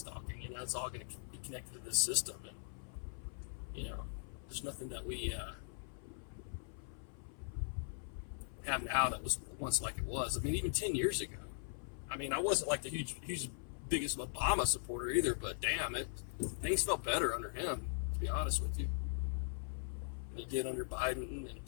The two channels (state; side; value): silent; right; 51 dB below the other